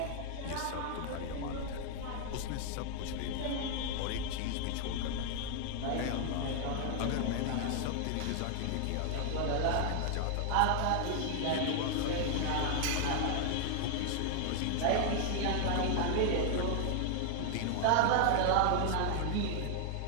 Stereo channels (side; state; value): both; different; correlation 0.00